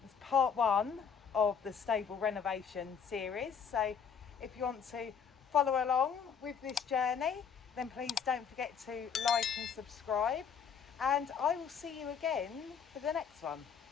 It's part 1 of the stable renovation series, so if you want to follow along with this journey, then please don't forget to like and subscribe, and I will see you again for the next one.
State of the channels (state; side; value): quieter; right; 7.0 dB